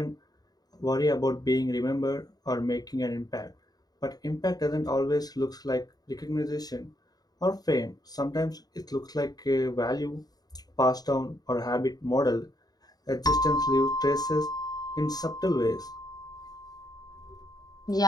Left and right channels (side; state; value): right; late; 0.19 ms